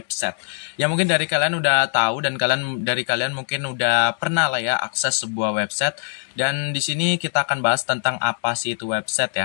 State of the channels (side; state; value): right; silent; 57 dB below the other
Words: Ya mungkin dari kalian udah tahu dan dari kalian mungkin udah pernah lah ya akses sebuah website, dan di sini kita akan bahas tentang apa sih itu website